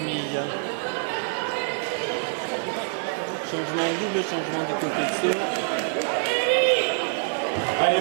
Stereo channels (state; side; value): silent; left; digital silence